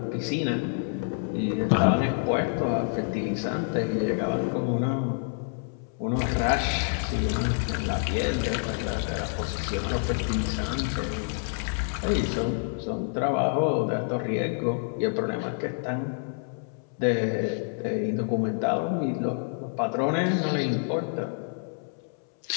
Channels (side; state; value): right; silent; 60 dB below the other